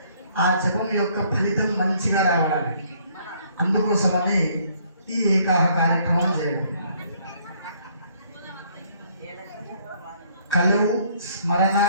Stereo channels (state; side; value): inverted; both; correlation -0.64